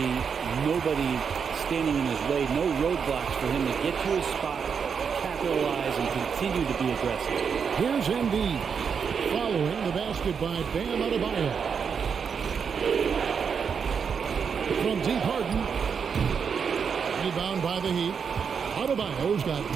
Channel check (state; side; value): quieter; left; 6.5 dB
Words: nobody standing in his way. No roadblocks for him to get to his spot, capitalize, and continue to be aggressive. Here's Embiid. Following the basket by Bam Adebayo. From deep, Harden. Rebound by the Heat. Adebayo's got